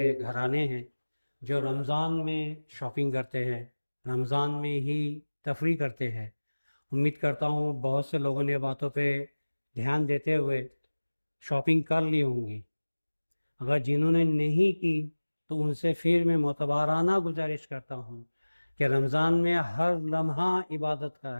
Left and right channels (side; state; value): both; inverted; correlation -1.00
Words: گھرانے ہیں جو رمضان میں شاپنگ کرتے ہیں، رمضان میں ہی تفریح کرتے ہیں۔ امید کرتا ہوں بہت سے لوگوں نے باتوں پہ دھیان دیتے ہوئے شاپنگ کر لی ہوں گی۔ اگر جنہوں نے نہیں کی تو ان سے پھر میں معتبرانہ گزارش کرتا ہوں کہ رمضان میں ہر لمحہ عبادت کا